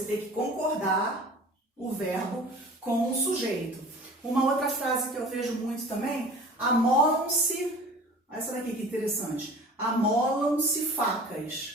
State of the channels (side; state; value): both; normal; correlation 0.42